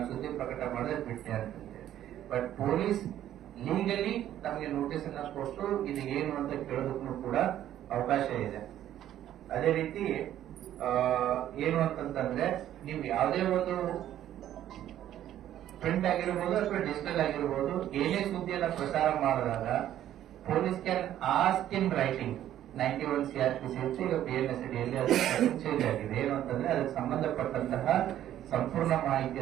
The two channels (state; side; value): quieter; left; 11.9 dB